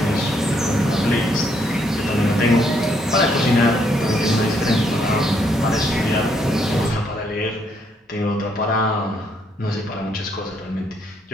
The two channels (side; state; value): both; normal; correlation 0.72